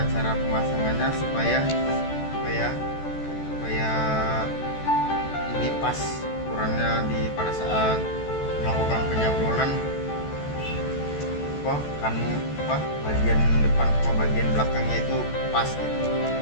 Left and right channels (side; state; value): right; late; 14 ms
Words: cara pemasangannya supaya ini pas ukurannya pada saat melakukan penyablonan, bagian depan sama bagian belakangnya itu pas gitu,